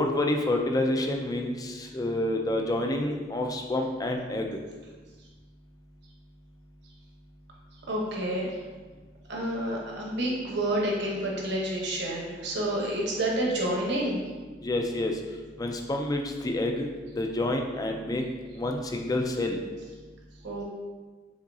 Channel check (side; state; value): both; normal; correlation 0.53